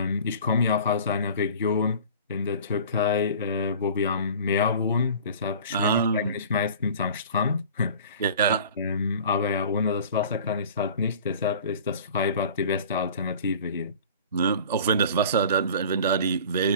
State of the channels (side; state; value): both; inverted; correlation -0.42